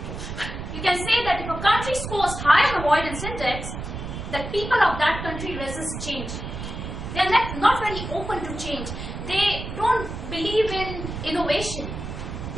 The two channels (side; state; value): right; noise; rumble, 7 dB below the sound